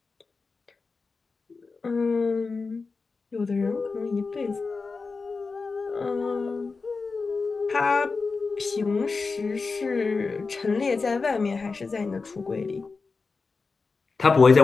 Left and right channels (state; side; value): quieter; right; 4.3 dB